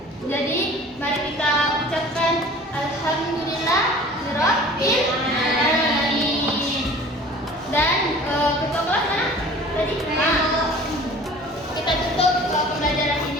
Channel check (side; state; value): both; normal; correlation 0.46